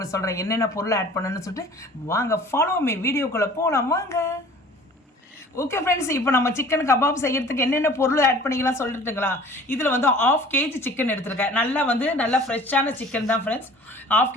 சொல்கிறேன் என்னென்ன பொருள் ஆட் பண்ணணும்னு சொல்லிட்டு. வாங்க ஃபாலோ மீ, வீடியோக்குள்ளே போகலாம் வாங்க. ஓகே ஃப்ரெண்ட்ஸ், இப்போ நம்ம சிக்கன் கபாப் செய்யறதுக்கு என்னென்ன பொருள் ஆட் பண்ணிக்கலாம் சொல்லிட்டுங்களா? இதில் வந்து 1/2 kg சிக்கன் எடுத்துருக்கேன். நல்லா ஃப்ரெஷ்ஷான சிக்கன் தான் ஃப்ரெண்ட்ஸ். 1/2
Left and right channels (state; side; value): normal; both; correlation 0.47